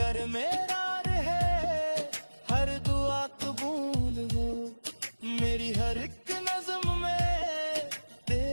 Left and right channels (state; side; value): inverted; both; correlation -1.00